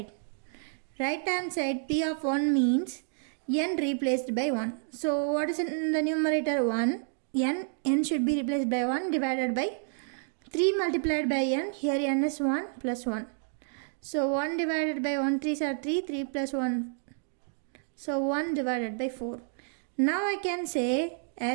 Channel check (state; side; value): silent; left; digital silence